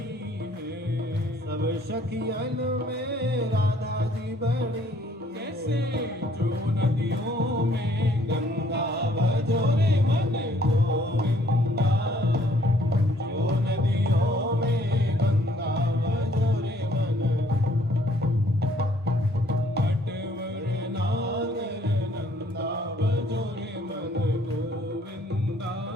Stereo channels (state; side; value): normal; both; correlation 0.62